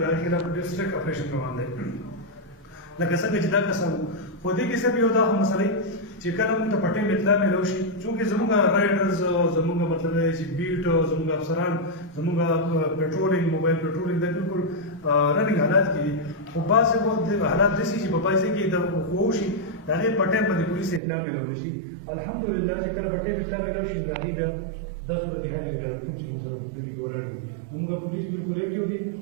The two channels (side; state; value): left; drops out; at 21.0 s